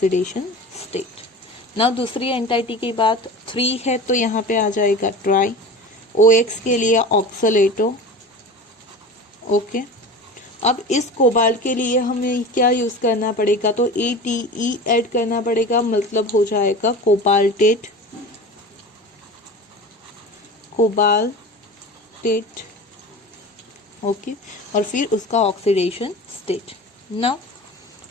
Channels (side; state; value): both; normal; correlation 0.34